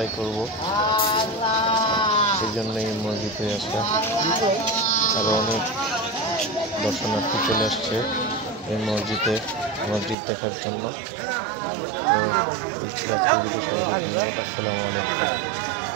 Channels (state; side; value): drops out; left; at 10.2 s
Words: করব, সেই জন্য এই মসজিদে আসা। আরো অনেক দর্শনার্থী চলে আসছে এই মসজিদ দেখার জন্য। তো এই ছিল আজকের ভিডিও। সবাইকে ধন্যবাদ। আসসালামু আলাইকুম।